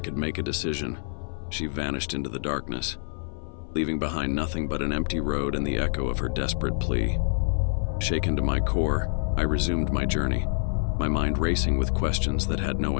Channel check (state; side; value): silent; right; 57 dB below the other